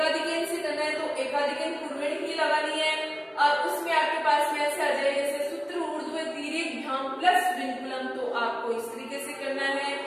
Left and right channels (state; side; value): identical; both; correlation 1.00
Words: से करना है तो एकाधिकन पूर्वेण ही लगानी है, और उसमें आपके पास में ऐसे आ जाए जैसे सूत्र ऊर्ध्व तिर्यक प्लस विनकुलम तो आपको इस तरीके से करना है।